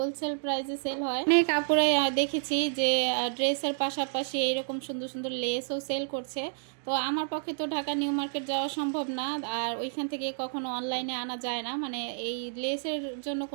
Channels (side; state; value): left; silent; digital silence